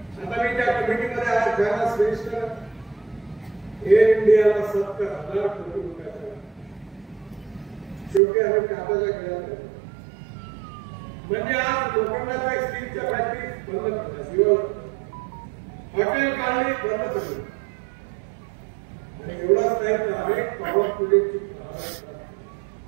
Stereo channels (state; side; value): drops out; left; at 8.2 s